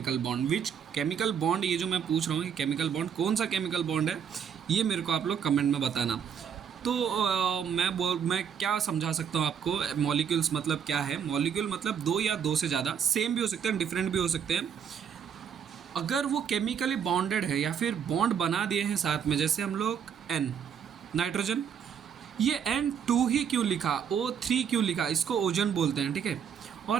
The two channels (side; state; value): left; quieter; 7.7 dB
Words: bond. Which chemical bond, ये जो मैं पूछ रहा हूँ कि केमिकल बॉन्ड कौन सा केमिकल बॉन्ड है, ये मेरे को आप लोग कमेंट में बताना। तो मैं क्या समझा सकता हूँ आपको, मॉलिक्यूल्स मतलब क्या है। मॉलिक्यूल मतलब दो या दो से ज़्यादा, सेम भी हो सकते हैं, डिफरेंट भी हो सकते हैं, अगर वो केमिकली बॉन्डेड है या फिर बॉन्ड बना दिए हैं साथ में। जैसे हम लोग एन, नाइट्रोजन, ये N2 ही क्यों लिखा, O3 क्यों लिखा, इसको ओजन बोलते हैं। ठीक है,